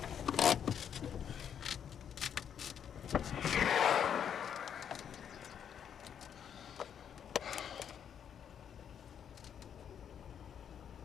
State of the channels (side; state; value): right; quieter; 8.4 dB